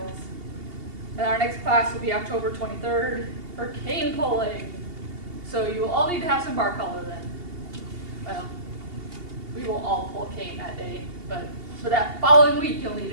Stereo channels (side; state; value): left; late; 2.8 ms